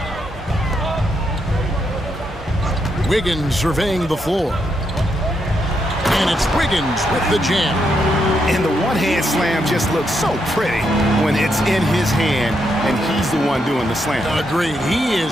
Wiggins surveying the floor. And it's Wiggins with the jam. And the one-hand slam just looks so pretty when it's in his hand and he's the one doing the slam. Agreed. He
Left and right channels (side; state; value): both; normal; correlation 0.79